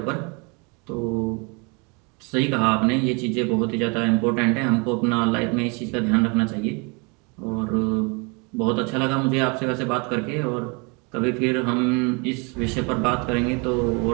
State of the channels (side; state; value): left; quieter; 31.4 dB